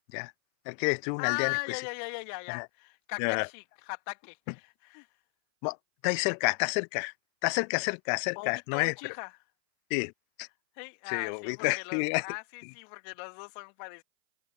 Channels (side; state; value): right; silent; 56 dB below the other